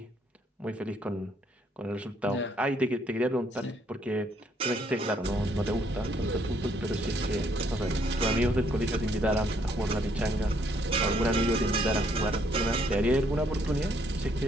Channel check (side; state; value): both; normal; correlation 0.69